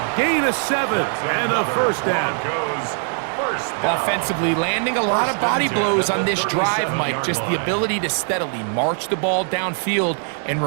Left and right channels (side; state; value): left; silent; 57 dB below the other